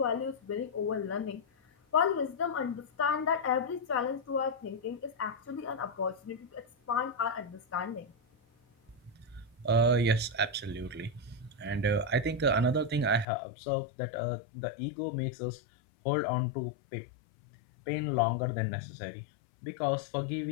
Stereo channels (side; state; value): right; drops out; at 13.2 s